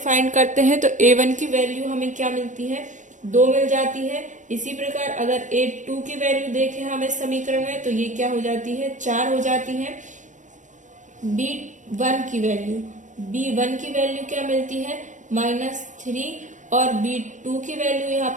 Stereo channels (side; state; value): left; late; 0.36 ms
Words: करते हैं। तो a1 की वैल्यू हमें क्या मिलती है, 2 मिल जाती है। इसी प्रकार अगर a2 की वैल्यू देखें हम इस समीकरण में, तो ये क्या हो जाती है, 4 हो जाती है। b1 की वैल्यू क्या मिलती है, -3, और b2 की वैल्यू यहाँ